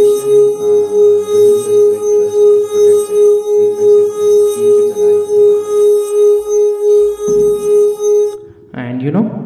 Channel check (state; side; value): identical; both; correlation 1.00